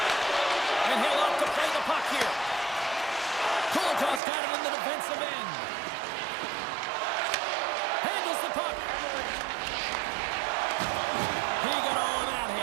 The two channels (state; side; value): drops out; left; at 4.2 s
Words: And he'll opt to play the puck here. Kulikov's got it in the defensive end. Handles the puck. He got all of that